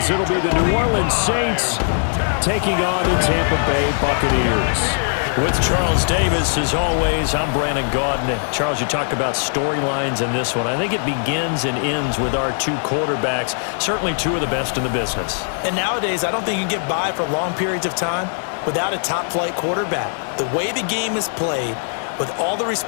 it'll be the New Orleans Saints taking on the Tampa Bay Buccaneers. With Charles Davis, as always, I'm Brandon Gaudin. Charles, you talk about storylines in this one. I think it begins and ends with our two quarterbacks, certainly two of the best in the business. And nowadays, I don't think you can get by for long periods of time without a top-flight quarterback. The way the game is played, with all the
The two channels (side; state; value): right; silent; digital silence